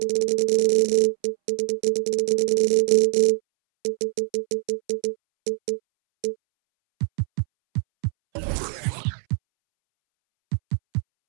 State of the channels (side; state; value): left; silent; 64 dB below the other